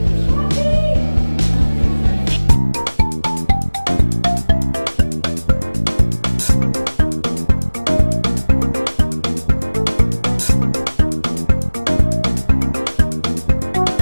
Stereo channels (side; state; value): both; inverted; correlation -1.00